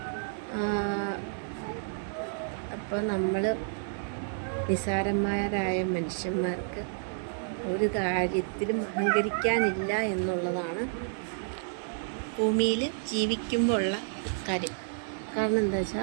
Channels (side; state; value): left; silent; digital silence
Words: അപ്പോൾ നമ്മൾ നിസ്സാരന്മാരായ മനുഷ്യന്മാർക്ക് ഒരു കാര്യത്തിലും അഹങ്കരിക്കാനില്ല എന്നുള്ളതാണ് ഭൂമിയിൽ ജീവിക്കുമ്പോൾ ഉള്ള കാര്യം. കാരണം എന്താ